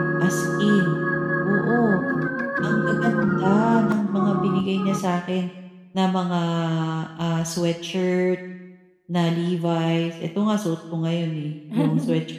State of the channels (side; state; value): both; identical; correlation 1.00